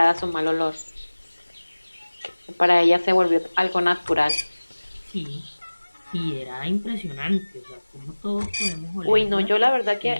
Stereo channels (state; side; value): inverted; both; correlation -1.00